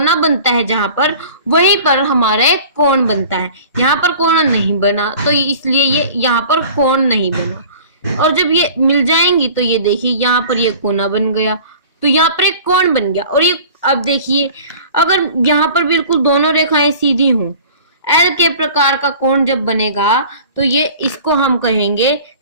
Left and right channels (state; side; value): inverted; both; correlation -0.44